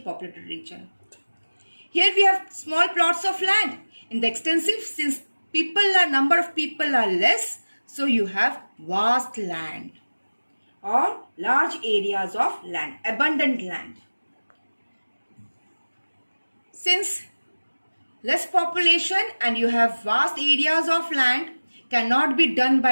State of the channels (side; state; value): both; inverted; correlation -1.00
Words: region. Here we have small plots of land. In the extensive, since number of people are less, so you have vast land or large areas of land, abundant land. Since less population and you have vast areas of land cannot be done